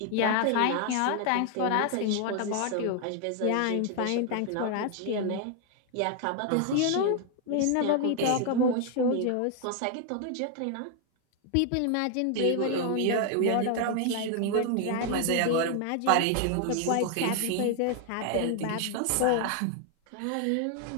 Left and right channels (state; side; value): different; both; correlation 0.00